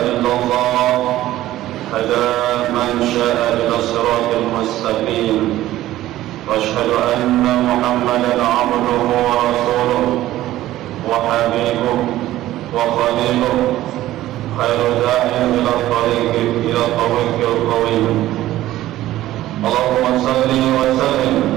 illallah hada man syaa'a ila siratal mustaqim wa asyhadu anna Muhammadan 'abduhu wa rasuluhu wa habibuhu wa khaliluhu khairu da'in ila tariqil qawim. Allahumma salli wa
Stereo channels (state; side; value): quieter; left; 14.8 dB